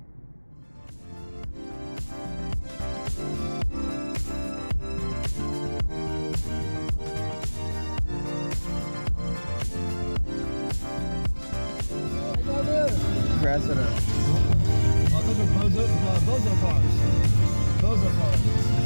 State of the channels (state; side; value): inverted; both; correlation -1.00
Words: rest of the. Oh, those are bozo cars. Bozo cars.